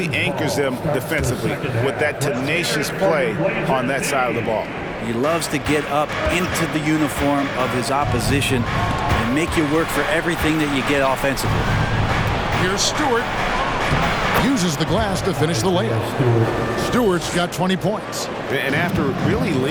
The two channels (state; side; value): identical; both; correlation 1.00